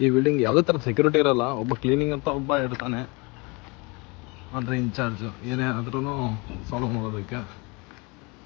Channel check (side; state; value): right; quieter; 28.1 dB